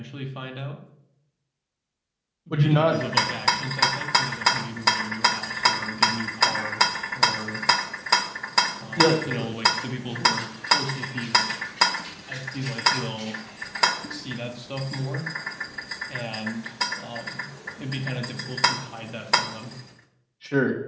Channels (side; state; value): both; identical; correlation 1.00